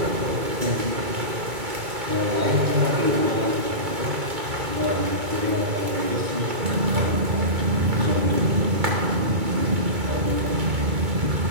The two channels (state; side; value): late; left; 2.3 ms